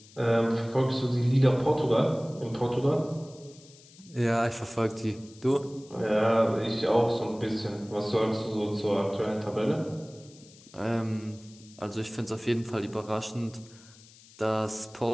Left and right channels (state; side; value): noise; left; hiss, 24 dB below the sound